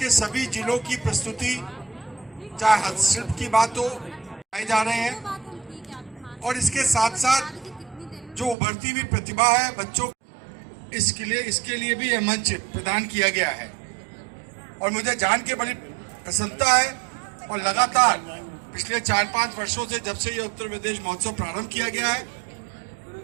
सभी जिलों की प्रस्तुति, चाहे हस्तशिल्प की बात हो, आए जा रहे हैं। और इसके साथ साथ जो उभरती हुई प्रतिभा है बच्चों, इसके लिए भी यह मंच प्रदान किया गया है। और मुझे जान के बड़ी प्रसन्नता है और लगातार पिछले 4-5 वर्षों से, जब से ये उत्तर प्रदेश महोत्सव प्रारंभ किया गया है,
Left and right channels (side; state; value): left; drops out; at 8.6 s